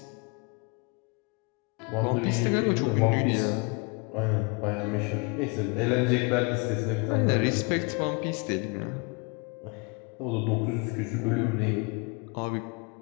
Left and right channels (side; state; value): right; quieter; 31.6 dB